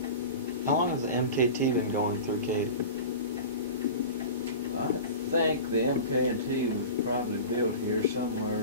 How long has the MKT been going through Katy? I think the MK&T was probably built here somewhere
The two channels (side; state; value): both; inverted; correlation -0.33